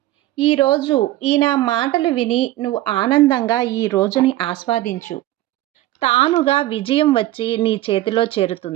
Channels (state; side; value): quieter; left; 15.6 dB